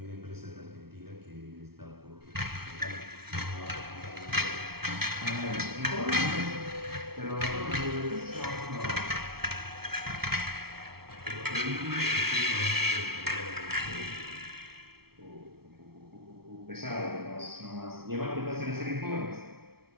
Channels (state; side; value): late; left; 0.95 ms